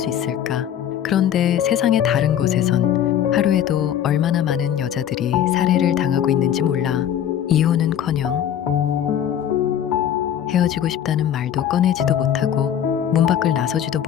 있을까? 그런데 세상의 다른 곳에선 하루에도 얼마나 많은 여자들이 살해를 당하고 있는지 몰라. 이혼은커녕 헤어지고 싶다는 말도 꺼내지도 못하고 문 밖을 나서지도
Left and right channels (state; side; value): quieter; right; 10.0 dB